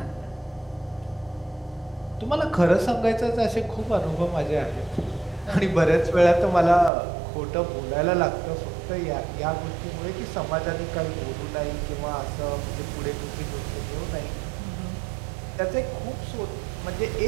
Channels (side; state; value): left; drops out; at 6.9 s